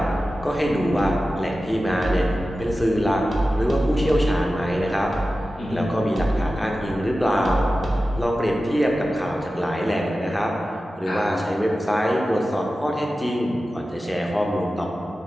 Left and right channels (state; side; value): normal; both; correlation 0.94